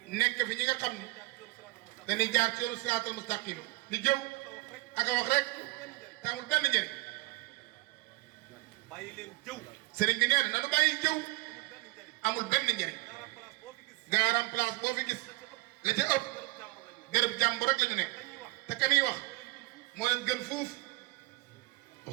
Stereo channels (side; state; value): left; quieter; 21.4 dB